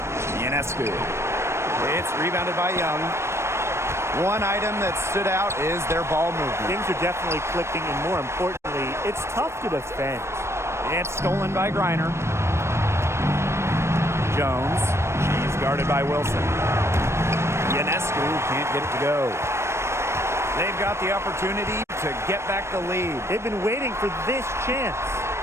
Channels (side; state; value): left; late; 0.13 ms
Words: Ionescu. It's rebounded by Young. One item that stood out is their ball movement. Things are definitely clicking, and more importantly, it's tough to defend. It's stolen by Griner. Jones. She's guarded by Wilson. Ionescu can't get it to go. They've got the opportunity to get back the lead. They've been waiting for this chance.